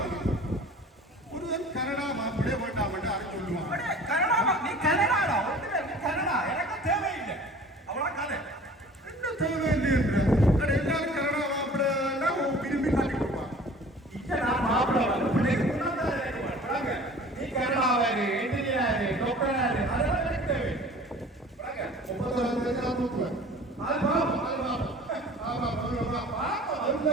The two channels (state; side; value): normal; both; correlation 0.46